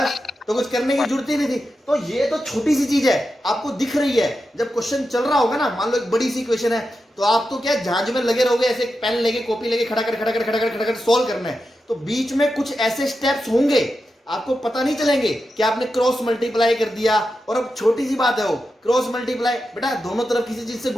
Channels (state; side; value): normal; both; correlation 0.89